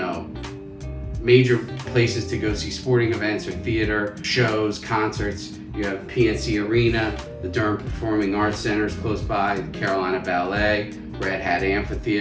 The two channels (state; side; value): identical; both; correlation 1.00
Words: major places to go see sporting events or theater, shows, concerts. You have PNC Arena, the Durham Performing Arts Center is close by, the Carolina Ballet, Red Hat